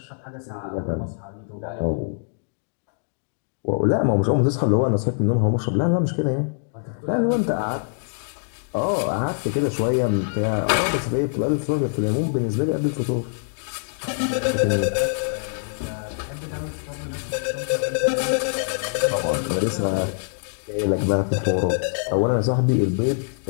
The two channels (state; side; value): silent; right; digital silence